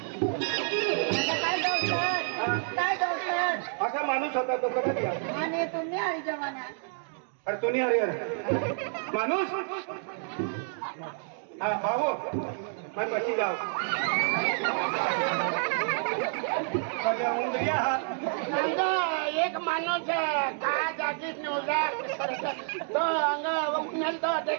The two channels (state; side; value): silent; left; 59 dB below the other